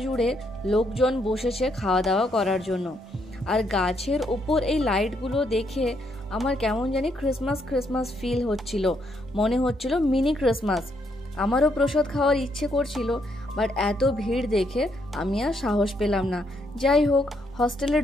লোকজন বসেছে খাওয়া দাওয়া করার জন্য। আর গাছের ওপর এই লাইটগুলো দেখে আমার কেমন জানি ক্রিসমাস ক্রিসমাস ফিল হচ্ছিল। মনে হচ্ছিল মিনি ক্রিসমাস। আমারও প্রসাদ খাওয়ার ইচ্ছে করছিল, বাট এত ভিড় দেখে আমি আর সাহস পেলাম না। যাই হোক, হস্টেলে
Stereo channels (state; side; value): normal; both; correlation 0.75